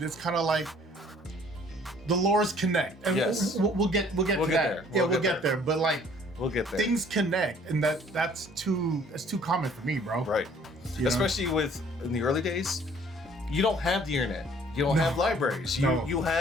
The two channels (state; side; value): normal; both; correlation 0.57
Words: it's kind of like the lores connect, and we'll get to that. We'll get there. But like we'll get there. Things connect, and that's too common for me, bro. Right. Especially with in the early days, you don't have the internet. You don't have libraries. You